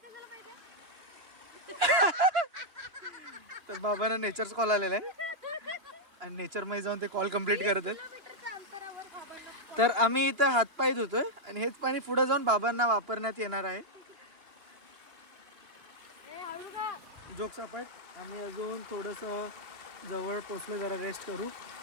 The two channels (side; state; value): left; late; 2.9 ms